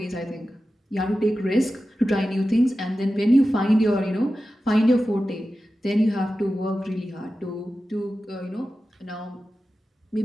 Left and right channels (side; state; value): both; normal; correlation 0.93